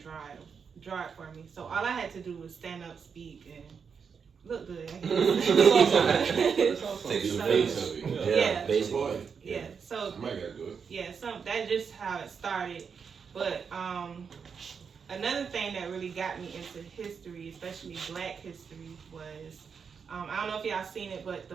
draw it for me. So all I had to do was stand up, speak, and look good. Take some face of it. Yeah. Basically. Yeah. So Somebody gotta do it. yeah, that's just how it started. But another thing that really got me into history, especially Black history, was I don't know if y'all seen it, but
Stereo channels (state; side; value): quieter; left; 6.2 dB